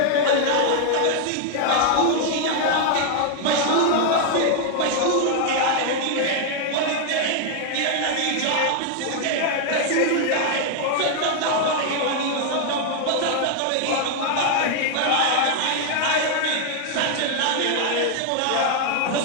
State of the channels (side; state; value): both; different; correlation 0.00